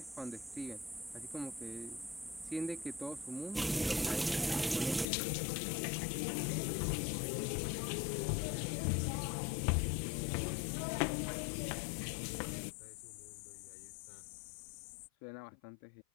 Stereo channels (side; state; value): right; drops out; at 5.1 s